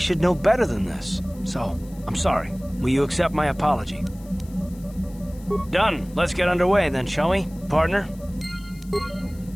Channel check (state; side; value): noise; left; hiss, 25 dB below the sound